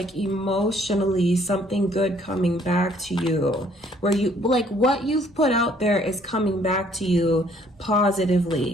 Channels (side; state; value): both; normal; correlation 0.62